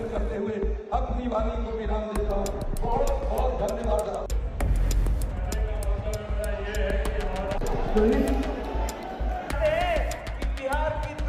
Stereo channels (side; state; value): both; identical; correlation 1.00